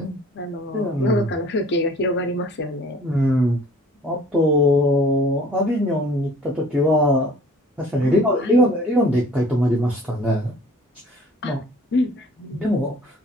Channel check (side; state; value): both; normal; correlation 0.51